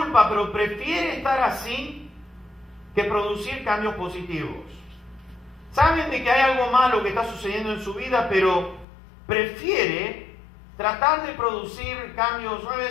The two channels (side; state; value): right; drops out; at 8.8 s